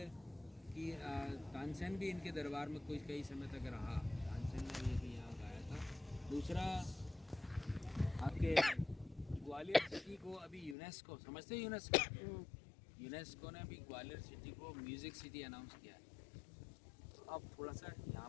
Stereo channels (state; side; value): drops out; right; at 10.8 s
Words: की तानसेन भी इनके दरबार में कुछ कई समय तक रहा, तानसेन ने भी यहाँ गाया था। दूसरा आपके ग्वालियर सिटी को अभी यूनेस्को, समझते हैं यूनेस्को? यूनेस्को ने अभी ग्वालियर सिटी को म्यूज़िक सिटी अनाउंस किया है। तो अब थोड़ा सा